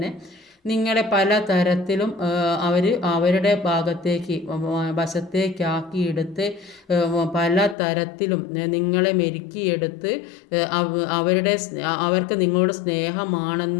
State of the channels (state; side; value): drops out; right; at 7.8 s